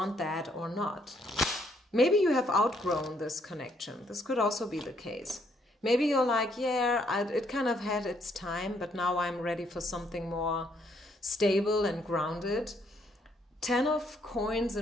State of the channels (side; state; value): both; normal; correlation 0.70